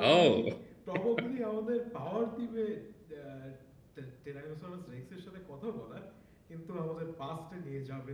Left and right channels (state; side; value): identical; both; correlation 1.00